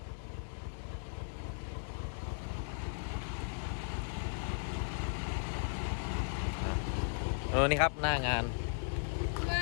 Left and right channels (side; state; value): right; silent; digital silence